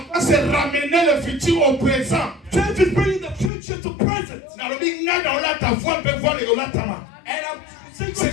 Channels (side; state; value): right; drops out; at 3.5 s